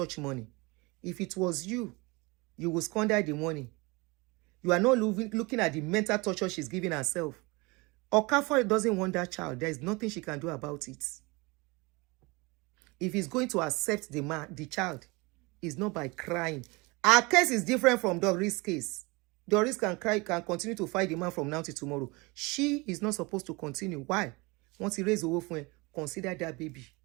money. If it was you, you will squander the money. You are not looking at the mental torture she's giving herself. Okafor doesn't want that child. There is nothing she can do about it. If he's going to accept the child, it's not by crying. Our case is different from Doris' case. Doris can continue to fight the man from now till tomorrow. She is not supposed to continue. Why? Once he raised the wolf, consider that baby.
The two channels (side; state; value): left; quieter; 25.7 dB